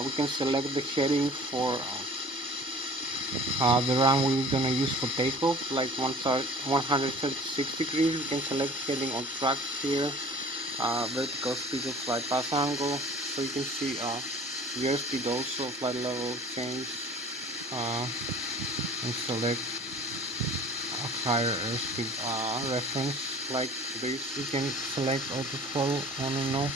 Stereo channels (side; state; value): both; normal; correlation 0.46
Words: We can select the heading for the runway we're gonna use for takeoff, like 136 degrees. We can select heading on track here. Vertical speed of flight path angle, so you can see the airspeed also, flight level change, and select a higher airspeed reference like this. You can select auto throttle on and off,